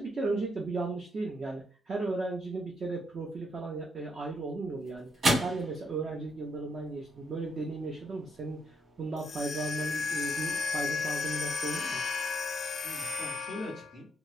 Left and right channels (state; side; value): normal; both; correlation 0.74